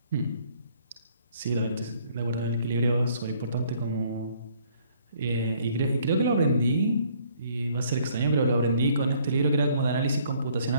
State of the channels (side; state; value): both; inverted; correlation -0.62